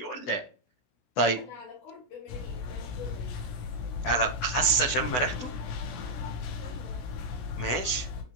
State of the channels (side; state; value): right; late; 16 ms